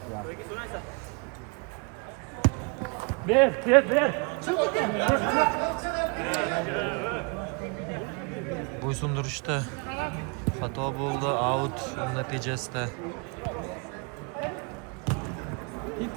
Ver. Bo'ysundirishda xato bo'ldi, out natijasida.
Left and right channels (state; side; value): quieter; left; 32.8 dB